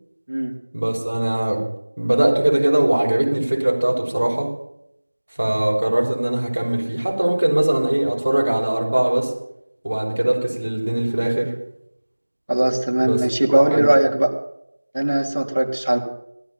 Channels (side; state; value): both; inverted; correlation -1.00